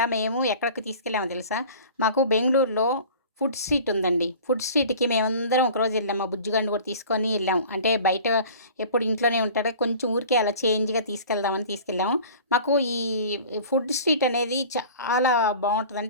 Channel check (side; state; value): both; inverted; correlation -0.42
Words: మేము ఎక్కడికి తీసుకెళ్ళామో తెలుసా? మాకు బెంగుళూరులో ఫుడ్ స్ట్రీట్ ఉందండి. ఫుడ్ స్ట్రీట్‌కి మేమందరం ఒకరోజు వెళ్ళాం. మా బుజ్జిగాడిని కూడా తీసుకొని వెళ్ళాం. అంటే బయట ఎప్పుడు ఇంట్లోనే ఉంటాడు. కొంచెం ఊరికే అలా చేంజ్‌గా తీసుకెళ్దామని తీసుకెళ్ళాము. మాకు ఈ ఫుడ్ స్ట్రీట్ అనేది చాలా